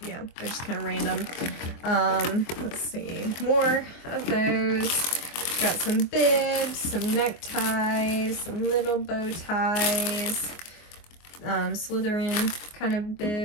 yeah, they're just kind of random. Let's see, more of those. Got some bibs, some neckties, some little bow ties, Slytherin kind of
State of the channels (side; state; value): right; late; 24 ms